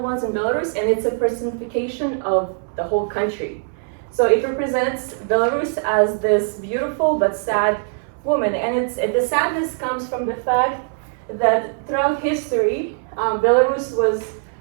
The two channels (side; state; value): left; silent; 65 dB below the other